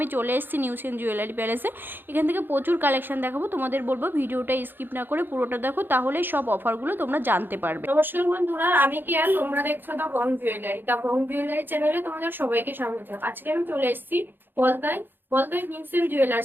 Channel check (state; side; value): late; left; 0.097 ms